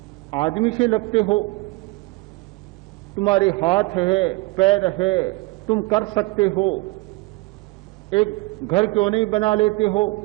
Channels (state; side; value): quieter; left; 23.1 dB